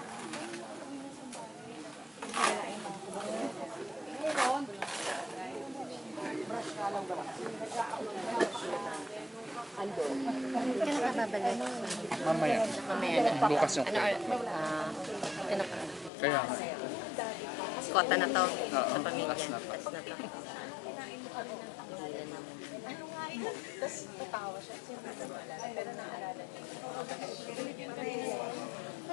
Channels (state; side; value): drops out; right; at 16.1 s